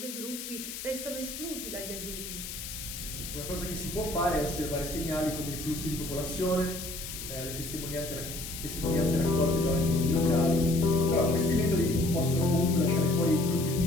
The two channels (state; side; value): noise; left; hiss, 9 dB below the sound